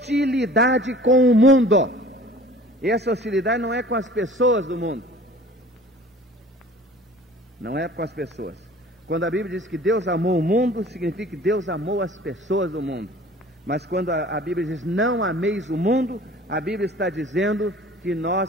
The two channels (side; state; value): both; normal; correlation 0.46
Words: com o mundo. E essa hostilidade não é com as pessoas do mundo. Não é com as pessoas. Quando a Bíblia diz que Deus amou o mundo, significa que Deus amou as pessoas do mundo. Mas quando a Bíblia diz não ameis o mundo, a Bíblia está dizendo que